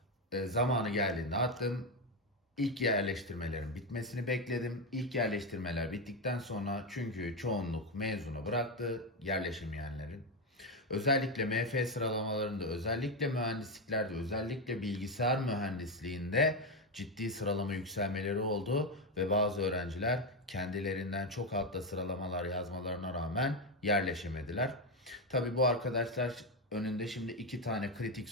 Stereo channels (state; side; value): normal; both; correlation 0.09